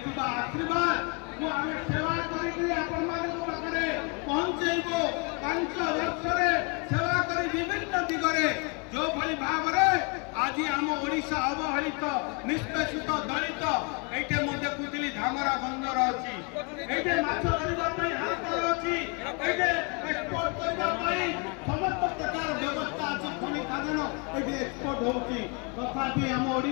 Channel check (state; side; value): quieter; right; 32.3 dB